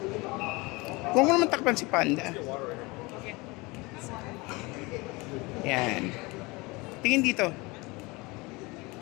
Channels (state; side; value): quieter; right; 24.6 dB